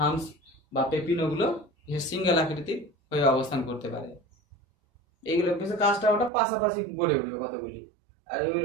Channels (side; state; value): left; drops out; at 6.3 s